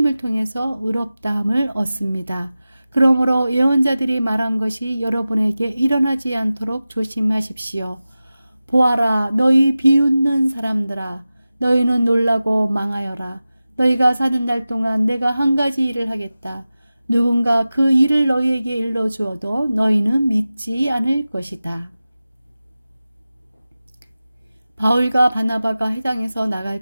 통해서 의롭다함을 얻습니다. 그러므로 예언자들이 말한 것이 여러분에게 일어나지 않도록 조심하십시오. 보아라, 너희 비웃는 사람들아, 너희는 놀라고 망하여라. 너희가 사는 날 동안 내가 한 가지 일을 하겠다. 누군가 그 일을 너희에게 일러주어도 너희는 믿지 않을 것이다. 바울과 바나바가 해당에서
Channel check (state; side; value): inverted; both; correlation -0.95